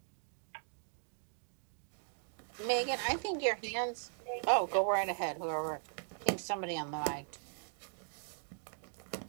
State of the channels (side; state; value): left; silent; 52 dB below the other